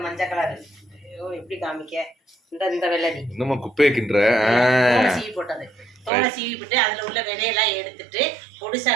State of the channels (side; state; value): left; drops out; at 6.1 s